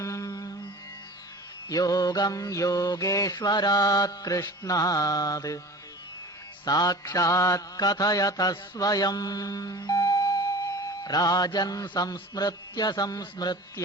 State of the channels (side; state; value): both; normal; correlation 0.38